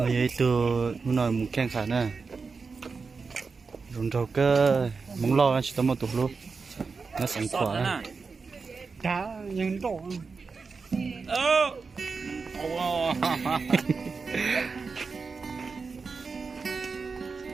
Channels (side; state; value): left; quieter; 4.7 dB